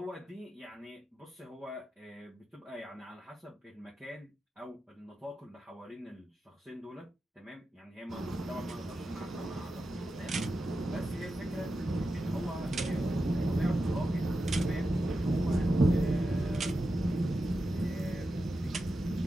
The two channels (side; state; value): both; normal; correlation 0.90